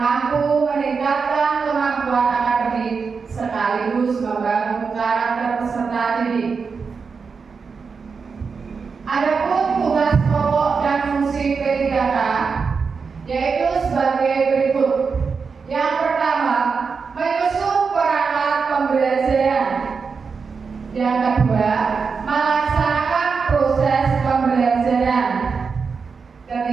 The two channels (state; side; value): quieter; left; 5.3 dB